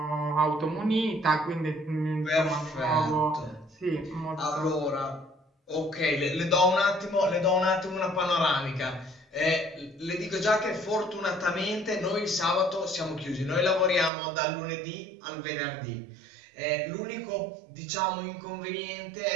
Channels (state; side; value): drops out; left; at 14.1 s